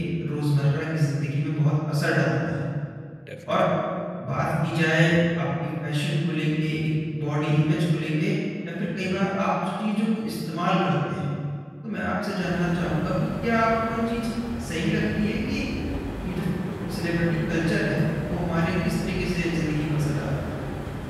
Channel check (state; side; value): identical; both; correlation 1.00